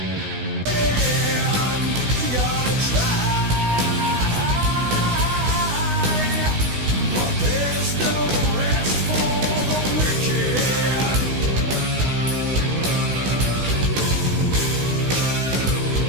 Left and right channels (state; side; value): late; left; 16 ms